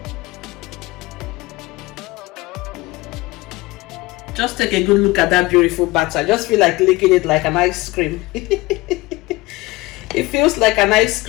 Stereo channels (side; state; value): right; quieter; 21.0 dB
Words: Just take a good look at that beautiful batter. I just feel like licking it like an ice cream. It feels like an ice